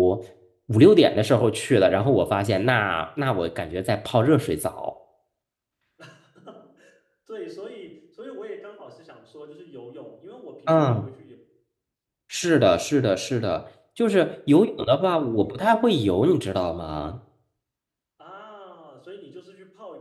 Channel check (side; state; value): both; identical; correlation 1.00